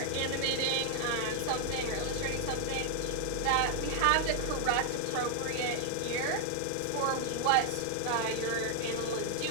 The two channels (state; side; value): different; both; correlation 0.00